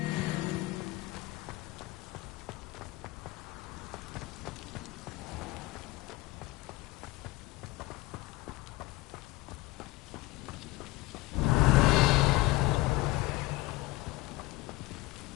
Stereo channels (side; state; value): right; quieter; 20.1 dB